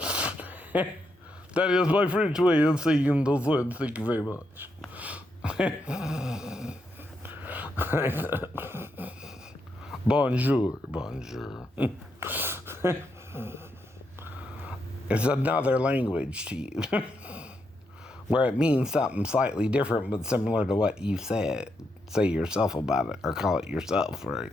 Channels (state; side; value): normal; both; correlation 0.81